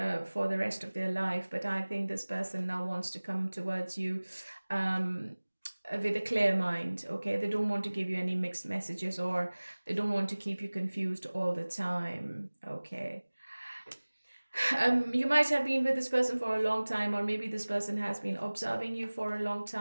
for the rest of their life. But I think this person now wants to come towards you with a clear mind. Okay, they don't want to give you any mixed messages, or they don't want to keep you confused all the time. Okay, you might have been with this person for a long time, or maybe this person has been observing you for a long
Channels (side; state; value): both; inverted; correlation -1.00